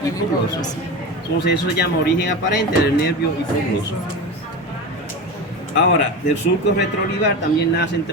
hipogloso. Entonces, eso se llama origen aparente del nervio hipogloso. Ahora, del surco retroolivar también nacen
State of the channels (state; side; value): normal; both; correlation 0.25